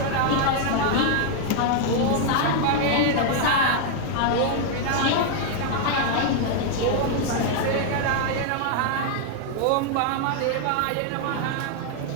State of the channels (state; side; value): different; both; correlation 0.00